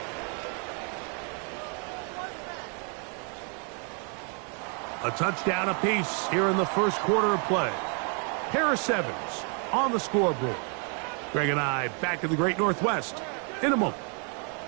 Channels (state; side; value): quieter; left; 39.3 dB